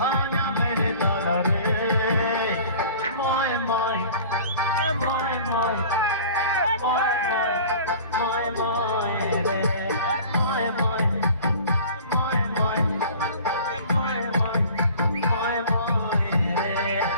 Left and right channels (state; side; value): inverted; both; correlation -0.44